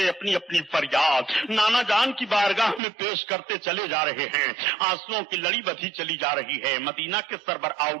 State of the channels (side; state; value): left; drops out; at 2.8 s